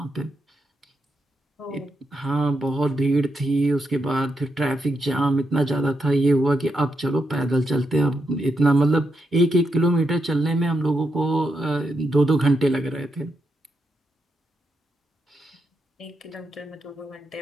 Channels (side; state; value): both; normal; correlation 0.83